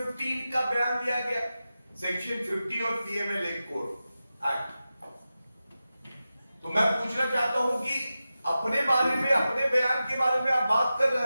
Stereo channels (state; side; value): inverted; both; correlation -0.93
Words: का बयान लिया गया, सेक्शन 50 और पीएमएल कोड एक्ट, तो मैं पूछना चाहता हूं कि अपने बारे में, अपने बयान के बारे में आप बात कर